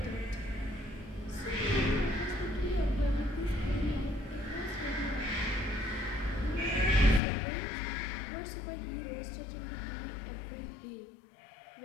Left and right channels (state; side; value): drops out; right; at 7.2 s